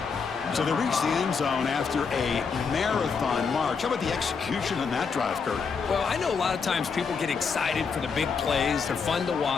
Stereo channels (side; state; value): right; quieter; 5.5 dB